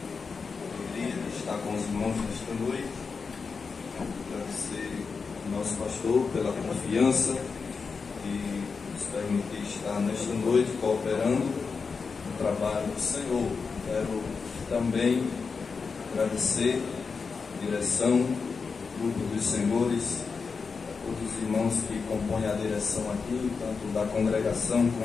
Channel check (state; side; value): quieter; right; 5.1 dB